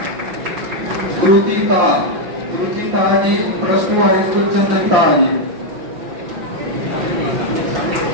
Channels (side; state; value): left; late; 5.7 ms